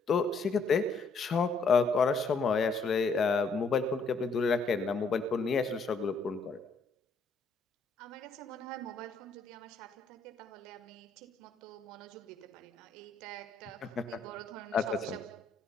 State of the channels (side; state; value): right; quieter; 4.0 dB